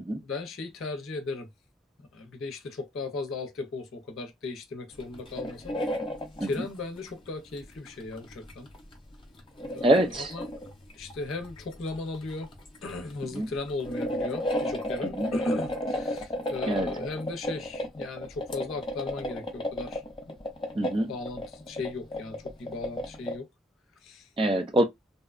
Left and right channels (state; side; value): normal; both; correlation 0.63